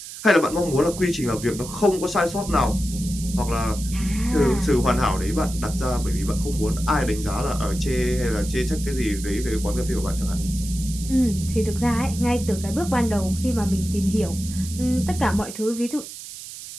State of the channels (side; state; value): right; noise; hiss, 12 dB below the sound